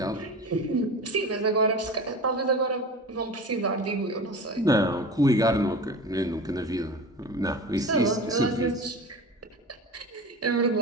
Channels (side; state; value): both; normal; correlation 0.33